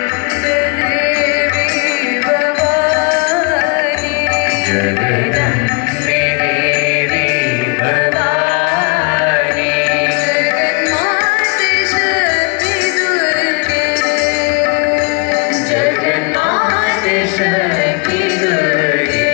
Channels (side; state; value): right; quieter; 32.1 dB